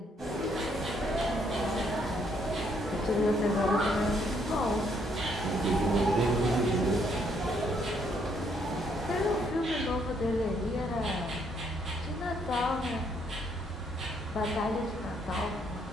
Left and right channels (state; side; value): normal; both; correlation 0.70